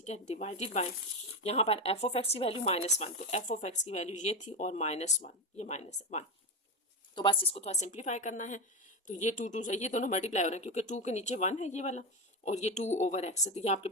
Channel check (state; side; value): normal; both; correlation 0.15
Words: है, डिवाइडेड बाय यहाँ पर एफ ऑफ एक्स की वैल्यू -1, तो एफ ऑफ एक्स की वैल्यू ये थी और -1, ये -1। तो बस इसको थोड़ा सिंप्लीफाई करना है। तो ये 2 से ये दोनों मल्टीप्लाई हो रहे हैं, क्योंकि 2 के नीचे 1 है ये वाला, और ये 2/x है, तो ये आपके